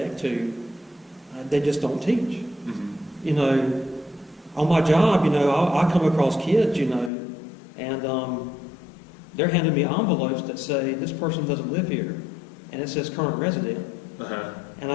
to, they just don't teach. You know, on my job, you know, I come across kids, you know, and they're handing me envelopes that say, this person doesn't live here, and it says current resident. And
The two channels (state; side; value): drops out; right; at 7.1 s